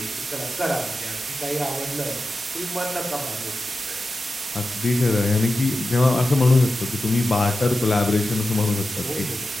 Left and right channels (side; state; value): both; normal; correlation 0.92